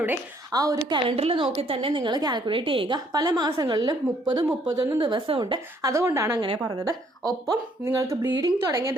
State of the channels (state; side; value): normal; both; correlation 0.65